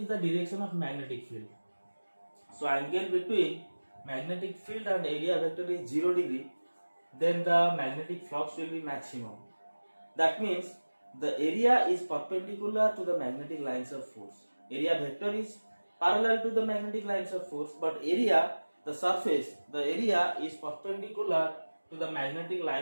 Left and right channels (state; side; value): inverted; both; correlation -1.00